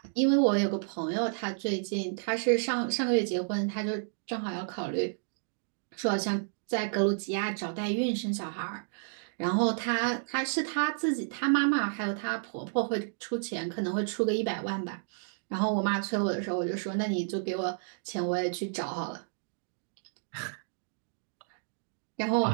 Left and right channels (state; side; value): silent; left; digital silence